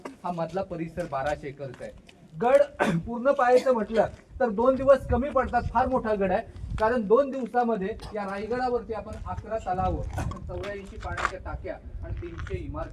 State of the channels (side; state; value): both; identical; correlation 1.00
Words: हा मधला परिसर 1200 एकरचा आहे। गड पूर्ण पाहायचं म्हटलं तर 2 दिवस कमी पडतात। फार मोठा गड आहे कारण 2 दिवसामध्ये या रायगडावरती आपण 11 तलाव, 84 पाण्याच्या टाक्या आणि 300